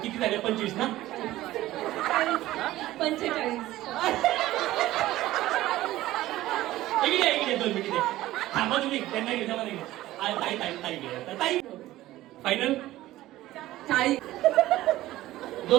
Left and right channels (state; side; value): quieter; left; 15.8 dB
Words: किती झाले? 25 ना? 45. इकडे 2 मिनिट थांबा तुम्ही. त्यांना घेता मला ताई फायनल